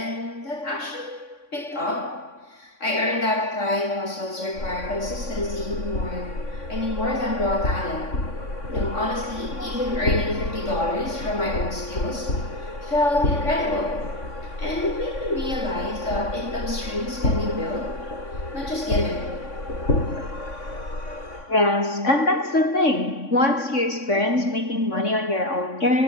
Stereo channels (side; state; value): right; late; 3.6 ms